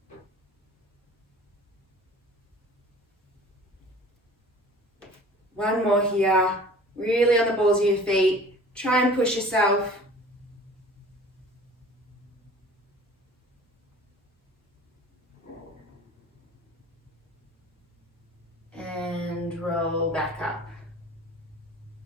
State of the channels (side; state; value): both; normal; correlation 0.45